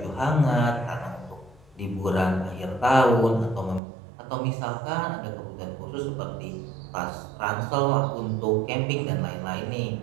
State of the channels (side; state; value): left; drops out; at 3.8 s